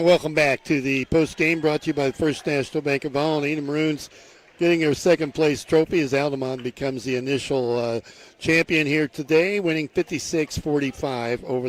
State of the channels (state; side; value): identical; both; correlation 1.00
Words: welcome back to the postgame brought to you by the First National Bank of Allen. The Maroons getting their second place trophy as Altamont becomes the initial champion here today, winning 56-45